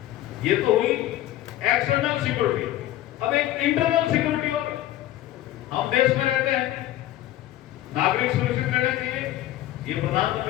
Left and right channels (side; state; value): right; quieter; 14.2 dB